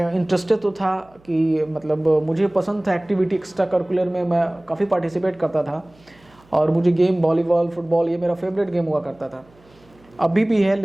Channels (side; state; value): right; noise; hum, 29 dB below the sound